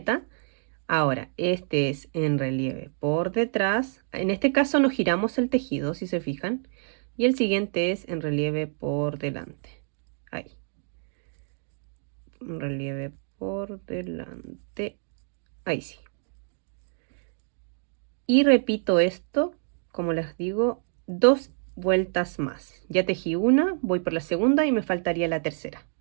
Ahora, este es en relieve por detrás. En este caso no giramos el tejido, si se fijan. Y el siguiente es en relieve por delante. Ahí. En relieve por delante. Ahí sí. Y repito esto, como les digo, dos vueltas más. Ya tejí una, voy por la segunda y me faltaría la tercera.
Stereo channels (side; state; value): left; silent; 60 dB below the other